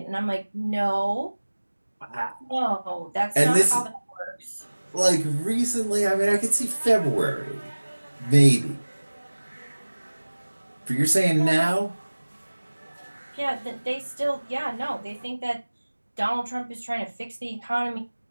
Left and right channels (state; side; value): inverted; both; correlation -1.00